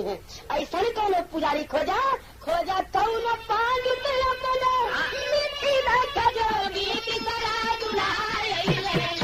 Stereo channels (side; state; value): both; identical; correlation 1.00